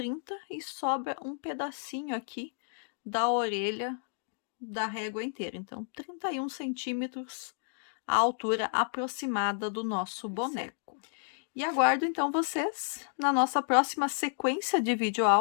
e sobra um pedacinho aqui da orelha da régua inteira. Então, 31 centímetros a altura aproximada do nosso boneco. E aguardo, então, vocês na nossa próxima sequência de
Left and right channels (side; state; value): right; silent; digital silence